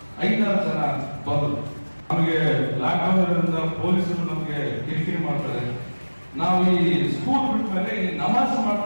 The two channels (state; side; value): inverted; both; correlation -1.00